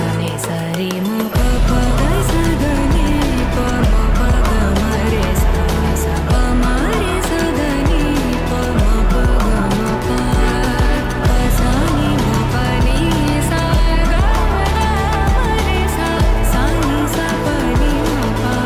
नि सा रे म प प ग स द नि प म प ग म रे सा सा प म रे सा द नि प म प ग म प प सा नि म प नि सा ग ग म रे सा सा नि सा प नि म प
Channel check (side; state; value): both; identical; correlation 1.00